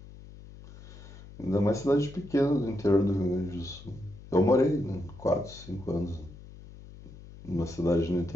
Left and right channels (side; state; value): left; noise; hum, 17 dB below the sound